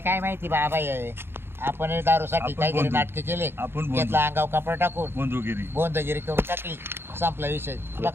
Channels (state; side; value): late; left; 0.11 ms